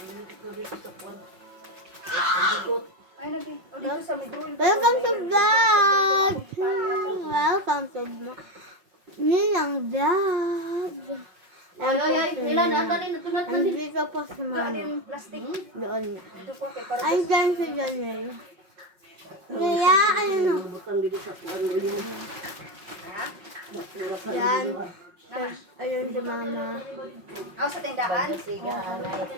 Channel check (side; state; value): left; late; 5.7 ms